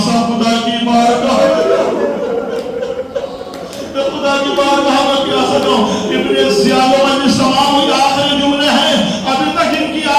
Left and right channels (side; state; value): both; identical; correlation 1.00